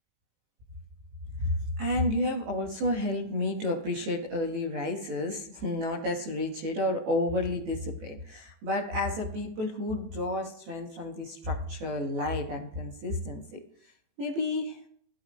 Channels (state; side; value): late; left; 18 ms